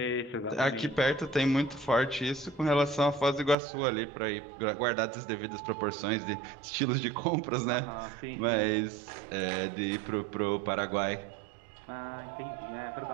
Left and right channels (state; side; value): drops out; left; at 3.6 s